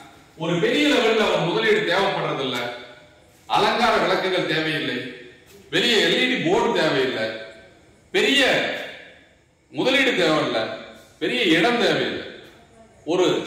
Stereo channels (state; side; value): identical; both; correlation 1.00